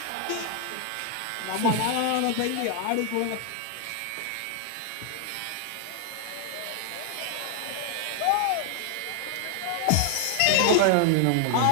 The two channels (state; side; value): different; both; correlation 0.00